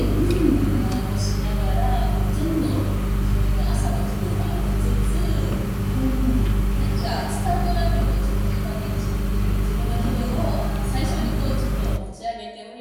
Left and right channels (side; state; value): both; identical; correlation 1.00